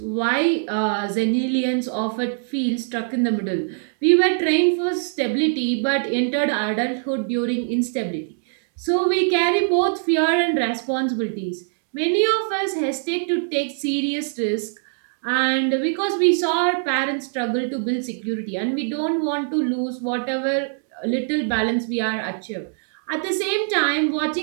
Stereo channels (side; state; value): left; silent; digital silence